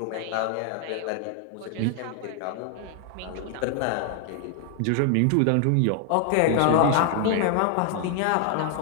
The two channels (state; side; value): different; both; correlation 0.00